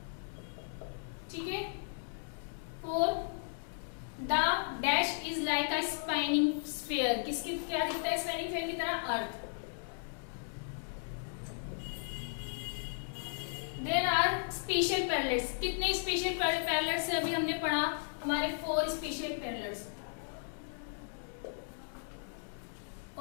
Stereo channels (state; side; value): silent; right; digital silence